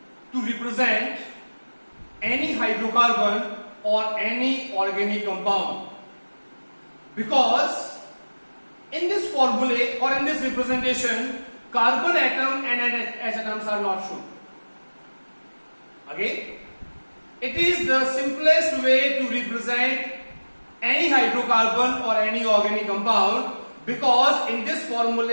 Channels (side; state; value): both; inverted; correlation -1.00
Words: to represent any hydrocarbon or any organic compound, because in this formulae or in this representation, carbon atom and H atoms are not shown. Again, it is the simplest way to represent any hydrocarbon or any organic compound, because in this